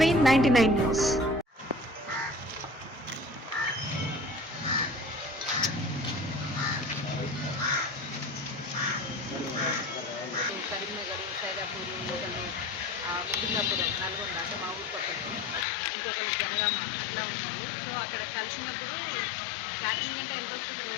న్యూస్. కరీంనగర్, సైదాపూర్, ఒకళ్ళు ముకుందాపురం, నల్గొండ అంటే మా ఊరు పక్కన, ఇంకొకళ్ళు జనగామ అట్లా ఉన్నారు. సో అక్కడ కలిసినప్పుడు క్యాటరింగ్ అంటే ఎంత వస్తుంది,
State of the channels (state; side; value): drops out; right; at 15.7 s